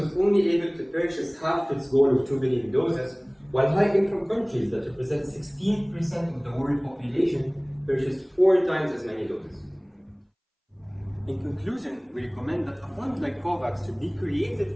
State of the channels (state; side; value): identical; both; correlation 1.00